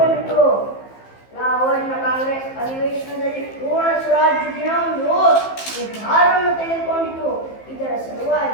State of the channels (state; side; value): late; right; 15 ms